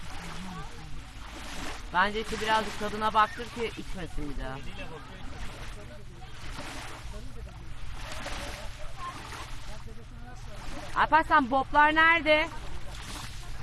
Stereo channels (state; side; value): identical; both; correlation 1.00